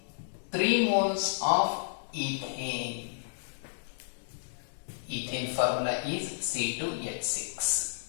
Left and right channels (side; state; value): right; silent; digital silence